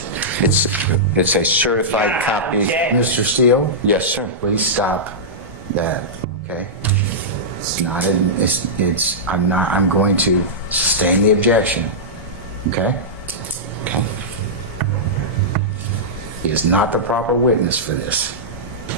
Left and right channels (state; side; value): normal; both; correlation -0.13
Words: It's a certified copy. object. Mr. Steele? Yes, sir. Please stop that, okay? It's not, I'm going to sustain the objection, okay? Okay. He is not the proper witness for this.